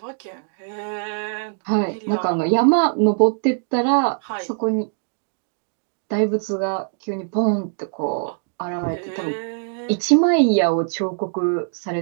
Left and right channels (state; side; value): silent; left; digital silence